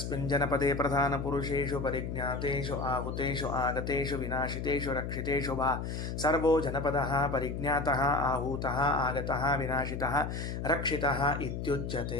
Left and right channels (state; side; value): noise; left; hum, 4 dB below the sound